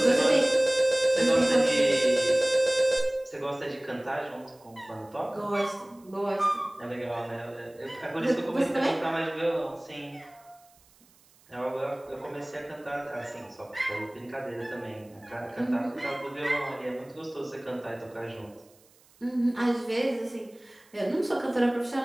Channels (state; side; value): noise; right; hiss, 30 dB below the sound